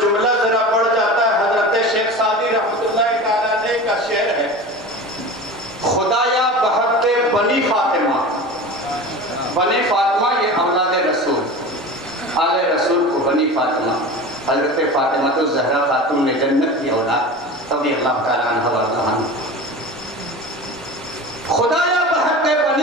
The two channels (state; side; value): normal; both; correlation 0.33